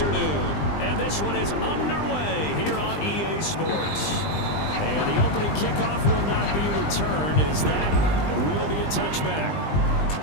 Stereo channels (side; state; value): right; late; 20 ms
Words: And this one is underway here on EA Sports. And the opening kickoff will not be returned, as that will be a touchback.